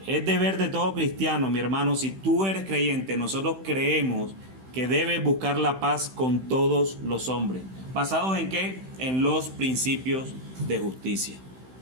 es deber de todo cristiano, mi hermano, si tú eres creyente, nosotros creemos que debes buscar la paz con todos los hombres. ¿Basados en qué? En los principios de justicia.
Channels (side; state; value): left; late; 16 ms